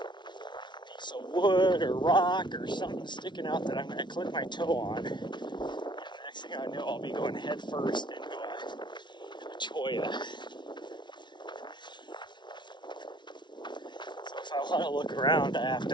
of wood or rock or something sticking out that I'm going to clip my toe on. And the next thing I know, I'll be going head first into a cholla. If I want to look around, I have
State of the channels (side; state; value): right; late; 0.22 ms